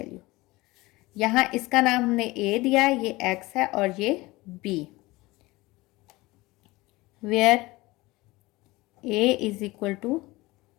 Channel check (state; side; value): quieter; right; 20.7 dB